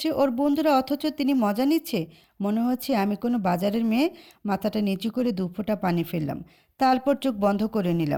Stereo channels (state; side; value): identical; both; correlation 1.00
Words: ওর বন্ধুরা, অথচ তিনি মজা নিচ্ছে। মনে হচ্ছে আমি কোনো বাজারের মেয়ে। মাথাটা নিচু করে 2 ফোঁটা পানি ফেললাম, তারপর চোখ বন্ধ করে